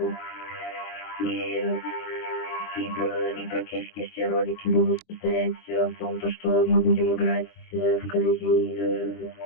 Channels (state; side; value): late; right; 23 ms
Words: И практически все ролики будут состоять в том, что мы будем играть в Колизей